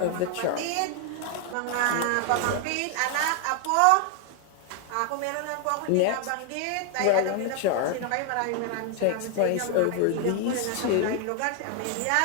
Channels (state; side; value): different; both; correlation 0.00